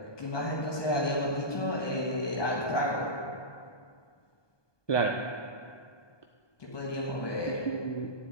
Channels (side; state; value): right; late; 1.2 ms